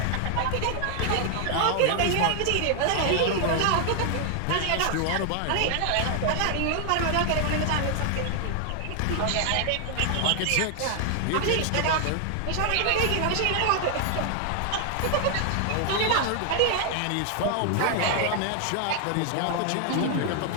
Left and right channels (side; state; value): both; different; correlation 0.00